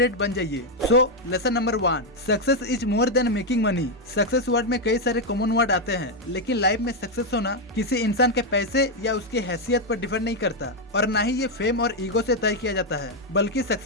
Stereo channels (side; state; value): both; normal; correlation 0.02